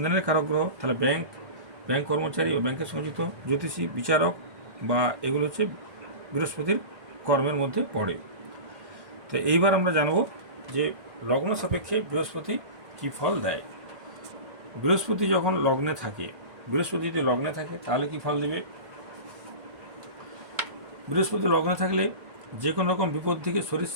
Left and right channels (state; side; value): late; left; 1.1 ms